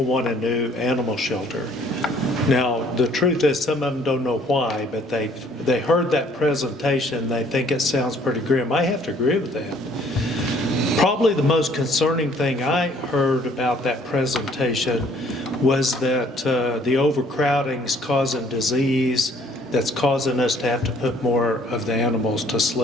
want a new animal shelter. Now, the truth is some of them don't know why, but they heard that presentation, they think it sounds pretty grim. I have to agree with that. Probably the most concerning thing I heard about that presentation was that the overcrowding is causing disease that's causing us to have to put more of the animals to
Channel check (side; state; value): both; normal; correlation 0.59